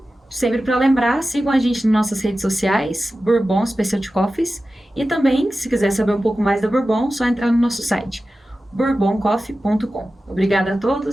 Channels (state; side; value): normal; both; correlation 0.94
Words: sempre para lembrar, sigam a gente nas nossas redes sociais, Bourbon Specialty Coffees. E também, se quiser saber um pouco mais da Bourbon, só entrar no nosso site, bourboncoffee.com. Obrigada a